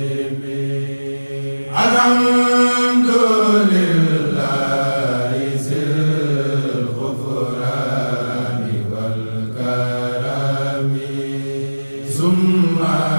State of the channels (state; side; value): inverted; both; correlation -1.00